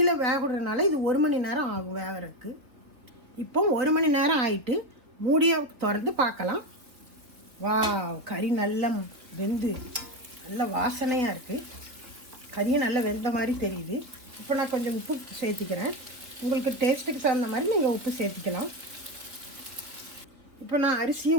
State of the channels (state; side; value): late; left; 3.2 ms